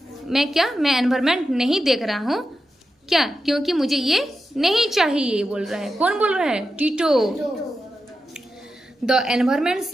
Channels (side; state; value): both; normal; correlation 0.89